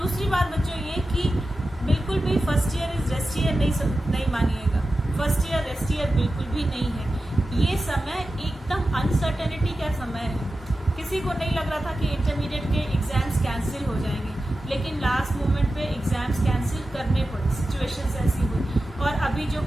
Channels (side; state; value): both; normal; correlation 0.93